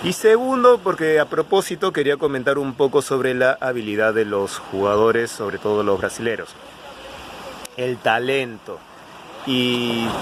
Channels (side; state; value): both; identical; correlation 1.00